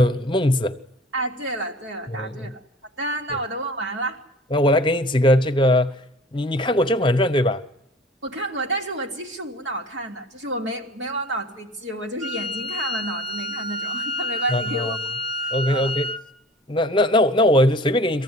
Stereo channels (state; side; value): normal; both; correlation 0.45